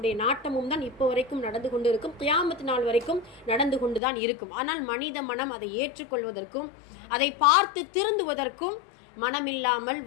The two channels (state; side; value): drops out; right; at 4.0 s